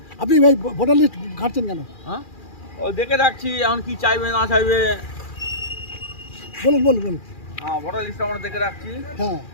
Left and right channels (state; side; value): late; right; 2.4 ms